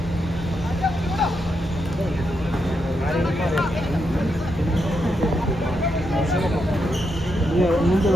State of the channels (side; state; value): both; normal; correlation 0.82